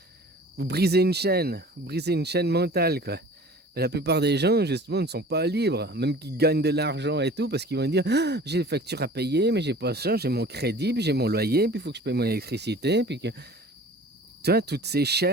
Vous brisez une chaîne mentale, quoi. Mais la plupart des gens, justement, ne sont pas libres, même qu'ils gagnent de l'argent et tout, parce qu'ils vont dire j'ai des factures à payer, mais j'ai pas ça, j'ai mon crédit, puis j'ai mon loyer, puis il faut que je paye mon électricité, puis que... Tu vois, toutes ces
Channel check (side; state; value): both; normal; correlation 0.44